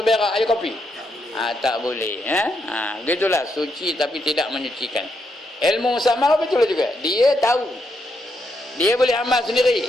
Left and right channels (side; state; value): both; normal; correlation 0.80